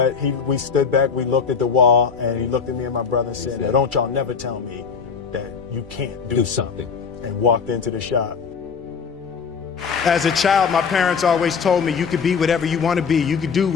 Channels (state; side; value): quieter; right; 6.0 dB